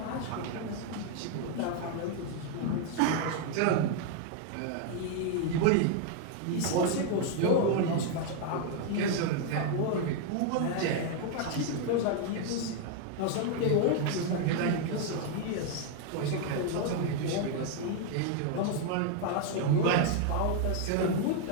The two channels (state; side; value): different; both; correlation 0.00